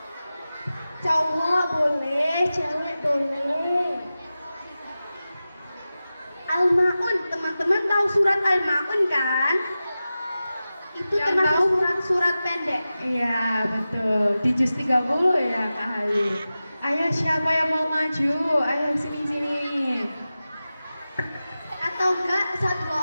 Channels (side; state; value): both; inverted; correlation -0.94